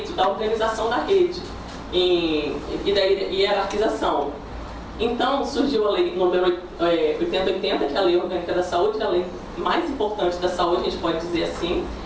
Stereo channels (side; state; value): both; identical; correlation 1.00